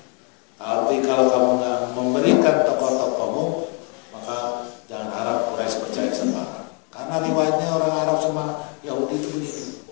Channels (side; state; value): right; quieter; 35.8 dB